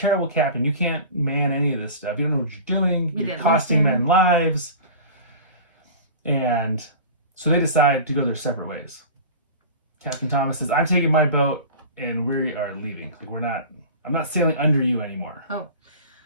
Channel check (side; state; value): both; inverted; correlation -0.36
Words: captain. You can't man any of this stuff. You don't know what you're doing. You're costing men lives. And so they decide to go their separate ways. Captain Thomas says, I'm taking my boat and we are leaving. I'm not sailing under you anymore. Oh.